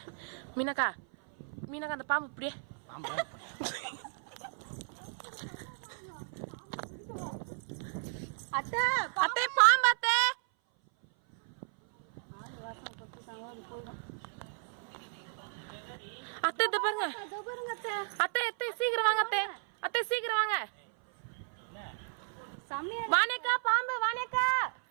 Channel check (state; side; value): silent; left; 55 dB below the other